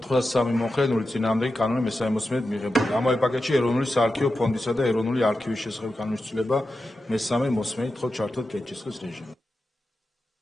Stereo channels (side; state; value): both; normal; correlation 0.91